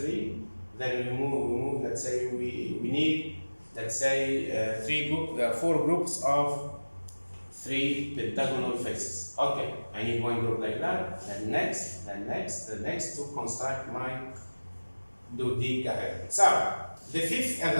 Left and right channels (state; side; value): inverted; both; correlation -1.00